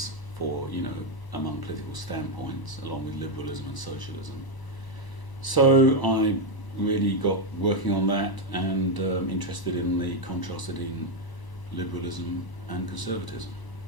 for among political standpoints, along with liberalism and socialism. So I really got working on that and interested in the contrast between liberalism and conservatism.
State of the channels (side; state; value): right; late; 1.0 ms